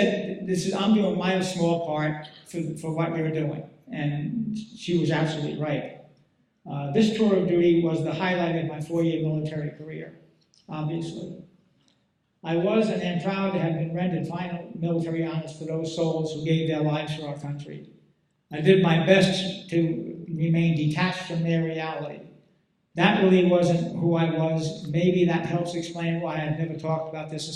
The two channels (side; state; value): both; identical; correlation 1.00